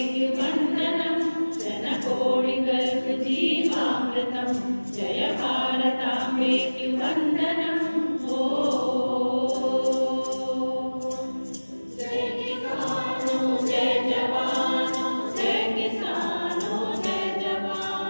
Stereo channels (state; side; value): inverted; both; correlation -1.00